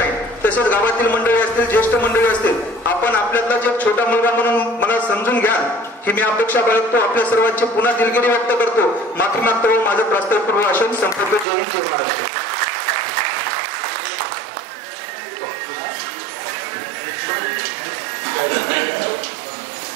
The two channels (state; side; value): drops out; left; at 11.5 s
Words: तसेच गावातील मंडळी असतील, ज्येष्ठ मंडळी असतील, आपण आपल्यातला जे छोटा मुलगा म्हणून मला समजून घ्या ही मी अपेक्षा बाळगतो। आपल्या सर्वांची पुन्हा दिलगिरी व्यक्त करतो, माफी मागतो व माझं प्रास्ताविक भाषण संपवतो। जय हिंद, जय महाराष्ट्र।